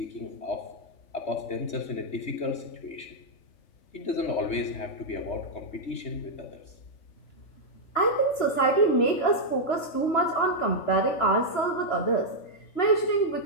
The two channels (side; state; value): right; late; 3.0 ms